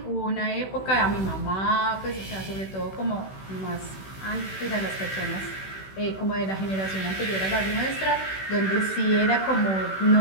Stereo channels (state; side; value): late; right; 16 ms